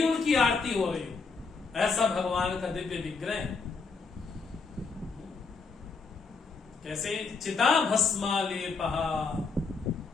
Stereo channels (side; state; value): right; quieter; 4.6 dB